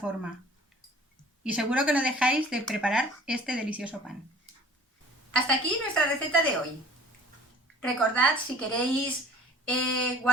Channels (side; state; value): both; normal; correlation 0.49